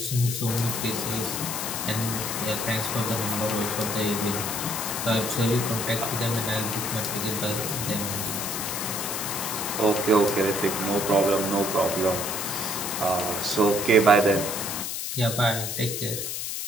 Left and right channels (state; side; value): noise; left; hiss, 3 dB below the sound